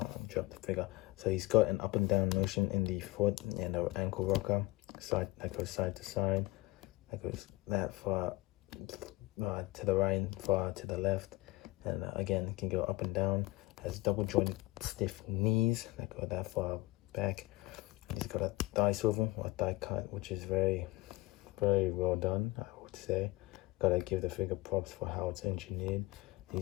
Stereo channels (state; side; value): quieter; right; 19.9 dB